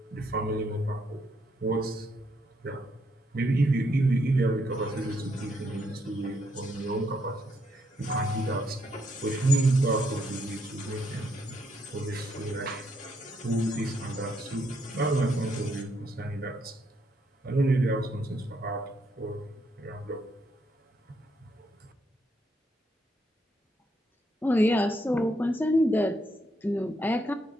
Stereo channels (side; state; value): both; normal; correlation 0.75